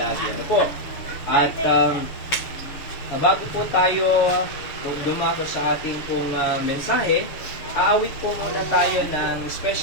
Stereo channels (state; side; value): late; right; 6.9 ms